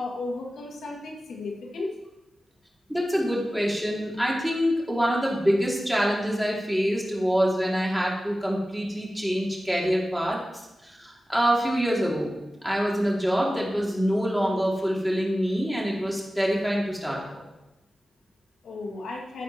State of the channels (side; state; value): both; normal; correlation 0.95